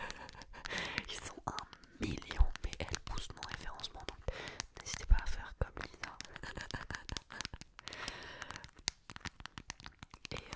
Ils sont 1 million, mais elle pousse mon référencement, donc n'hésitez pas à faire comme Lisa. Et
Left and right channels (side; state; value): both; identical; correlation 1.00